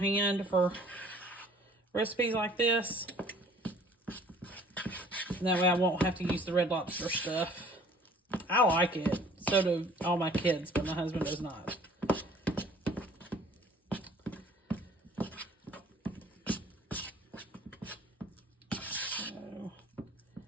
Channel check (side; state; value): both; normal; correlation 0.53